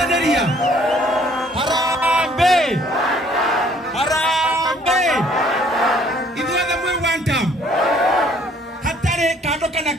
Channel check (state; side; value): normal; both; correlation 0.60